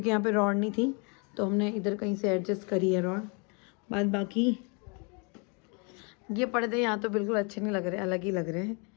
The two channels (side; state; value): right; quieter; 34.2 dB